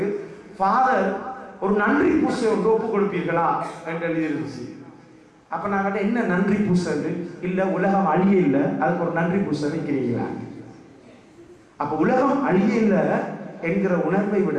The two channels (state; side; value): identical; both; correlation 1.00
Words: ஃபாதர் ஒரு நன்றி பூசை ஒன்று ஒப்பு கொடுப்பீர்களா என்று எழுதிருந்துச்சு. அப்ப நான் கேட்டேன், என்ன நன்றி பூசை? இல்ல உலகம் அழிய இல்லை, அதுக்கு ஒரு நன்றி பூசை வைக்கிறீங்களா? அப்ப உலகம் அழிய இல்லை என்கிற உணர்வை விட